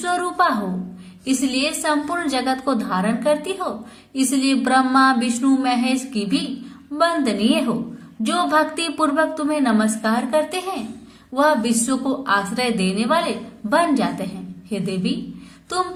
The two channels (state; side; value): identical; both; correlation 1.00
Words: हो, इसलिए संपूर्ण जगत को धारण करती हो। इसलिए ब्रह्मा विष्णु महेश की भी वंदनीय हो। जो भक्ति पूर्वक तुम्हें नमस्कार करते हैं वह विश्व को आश्रय देने वाले बन जाते हैं। हे देवी तुम